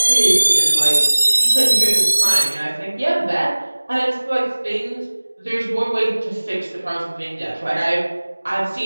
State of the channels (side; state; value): both; inverted; correlation -1.00